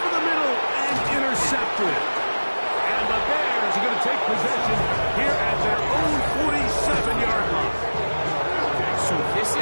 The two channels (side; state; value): both; inverted; correlation -1.00